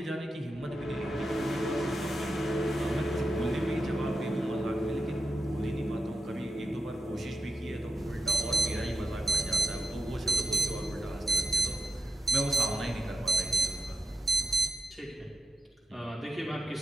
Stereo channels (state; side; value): normal; both; correlation 0.87